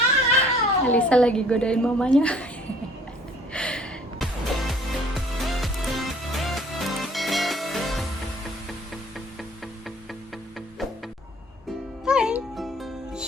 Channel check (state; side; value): normal; both; correlation 0.55